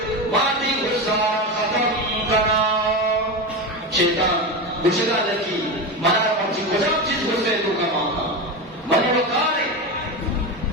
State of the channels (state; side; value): normal; both; correlation 0.19